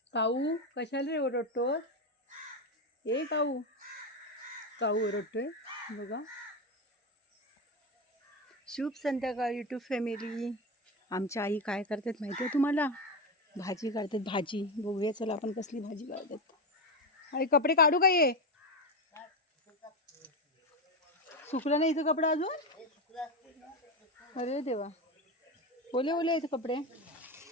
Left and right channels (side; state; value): both; normal; correlation 0.14